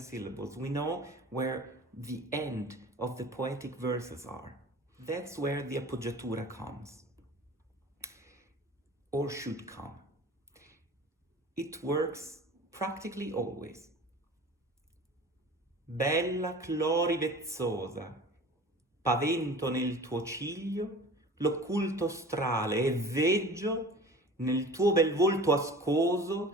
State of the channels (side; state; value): both; normal; correlation 0.40